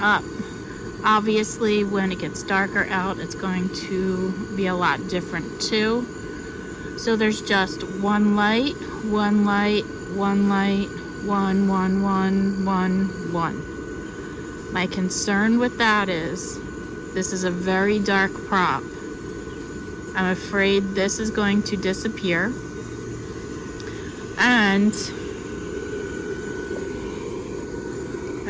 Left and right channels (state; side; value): identical; both; correlation 1.00